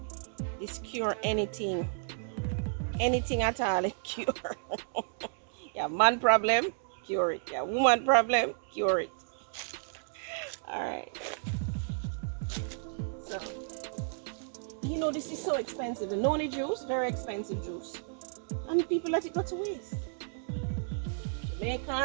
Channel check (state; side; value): silent; left; digital silence